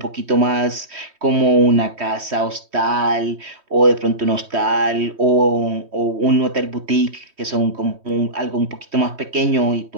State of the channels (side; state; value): left; late; 3.1 ms